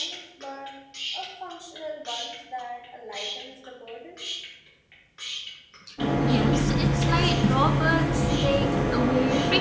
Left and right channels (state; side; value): identical; both; correlation 1.00